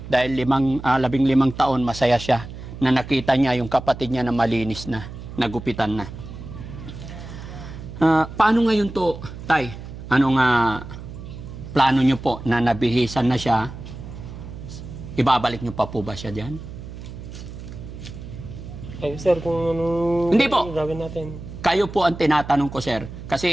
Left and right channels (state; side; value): noise; right; hum, 12 dB below the sound